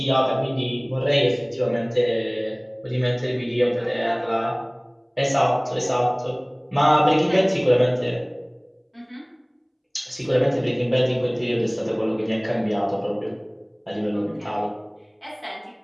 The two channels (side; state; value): both; identical; correlation 1.00